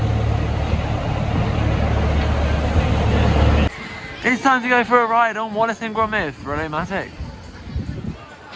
It's time to go for a ride on Wildest and Rollercoasters.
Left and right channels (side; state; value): both; identical; correlation 1.00